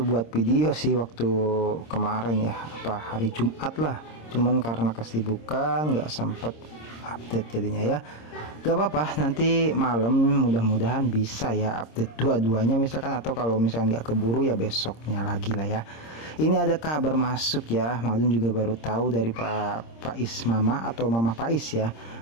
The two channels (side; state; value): right; late; 26 ms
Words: buat video sih waktu kemarin ya, hari Jumat lah. Cuman karena kesibukan nggak sempet update jadinya ya. Gak apa-apa, nanti malam mudah-mudahan bisa ya update dua-duanya misalkan, atau kalau misalkan nggak keburu ya besoknya lagi lah ya. Ini ada kabar masuk ya, Mang Adun juga baru tahu dari Pak Ismama atau Mama Pais ya.